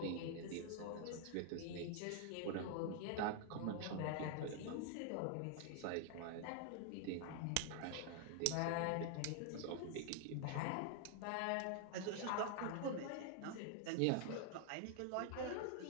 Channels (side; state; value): both; different; correlation 0.00